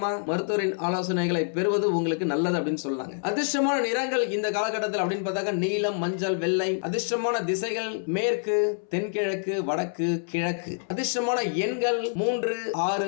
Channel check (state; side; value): silent; right; 60 dB below the other